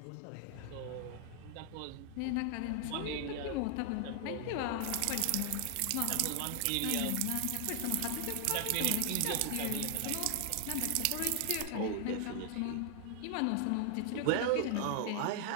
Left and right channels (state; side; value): different; both; correlation 0.00